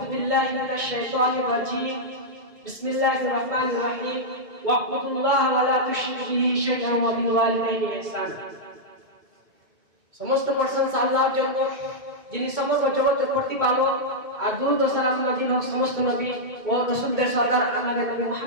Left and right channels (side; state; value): left; late; 2.2 ms